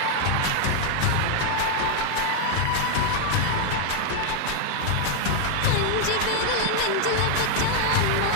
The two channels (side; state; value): both; different; correlation 0.00